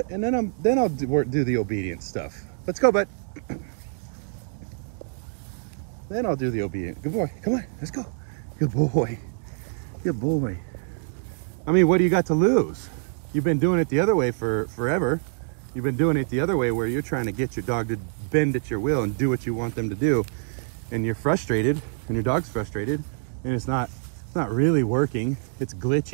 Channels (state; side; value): silent; left; digital silence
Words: And then I'll do the obedience stuff. Let's go, bud. Then I'll do the obedient. Good boy, come on, let's go. Good boy, good boy. I mean, what do you got to lose? You've been doing it the other way for forever. You've been doing it the other way where you're trying to get your dog to bend at your will and do what you want them to do. And you're frustrated and your dog's frustrated and it's not really working. It's